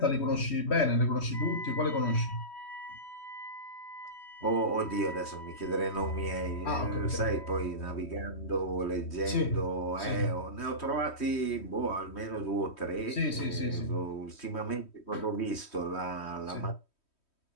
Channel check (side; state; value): right; late; 3.1 ms